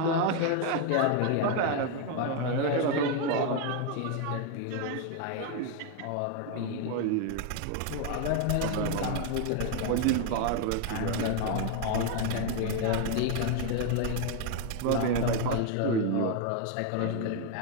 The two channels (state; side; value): different; both; correlation 0.01